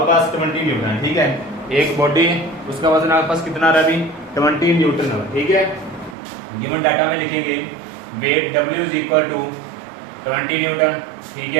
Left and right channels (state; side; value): drops out; left; at 6.2 s